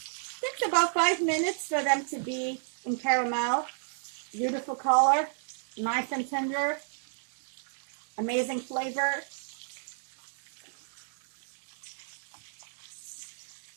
Takes about 5 minutes for them to be in caramel. Beautiful color, nice and tender, amazing flavor.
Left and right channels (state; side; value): silent; left; digital silence